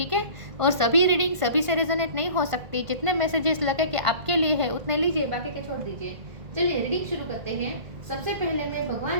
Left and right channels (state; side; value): late; left; 1.4 ms